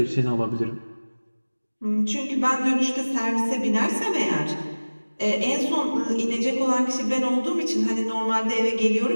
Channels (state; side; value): inverted; both; correlation -1.00